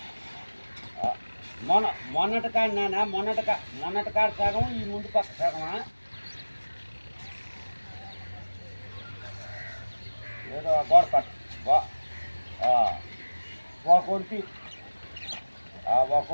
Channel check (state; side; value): inverted; both; correlation -1.00